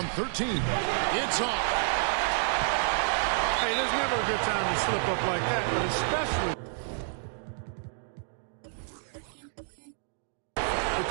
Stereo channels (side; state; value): left; silent; digital silence